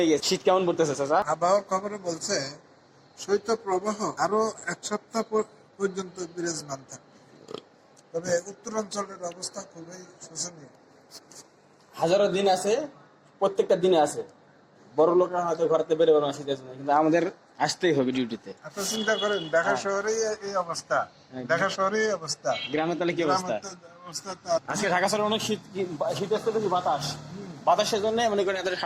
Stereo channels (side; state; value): both; identical; correlation 1.00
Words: গেছেন। শীত কেমন পড়তেছে স্যার? আবহাওয়ার খবরে বলছে শৈত্যপ্রবাহ আরো এক সপ্তাহ পর্যন্ত বিরাজমান থাকবে। তবে উত্তরাঞ্চলের অবস্থা খুবই শোচনীয়। হাজারো দিন আছে, প্রত্যেকটা দিনে আছে। বড় লোকরা হয়তো ঘরেতে বেরোবে না শীতের জন্য, কিন্তু আমাদের আসতেই হবে ডিউটিতে। আপনি চিন্তা করেন ঢাকা শহরেই এই অবস্থা, ঢাকা শহরেই এই অবস্থা, গ্রামে তাহলে কি অবস্থা? গ্রামের তো অবস্থা তো আজকে ঢাকা শহরে অনেক শীত, শীত আসতে দেখি বাতাস, বাতাসের জন্য মনে করেন এত